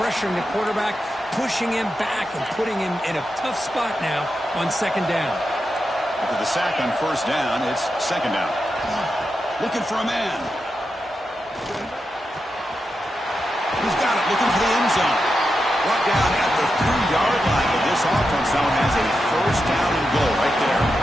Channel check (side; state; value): both; normal; correlation 0.88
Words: the quarterback, pushing him back and putting him in a tough spot now on 2nd down. After the sack on 1st down, it's 2nd down. Looking for a man. He's got it, looking for the end zone. Brought down at the 3-yard line, but this offense now has a 1st down and goal right there.